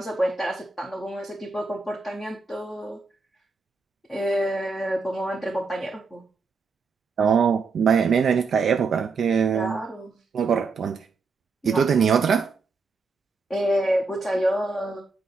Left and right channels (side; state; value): left; quieter; 4.4 dB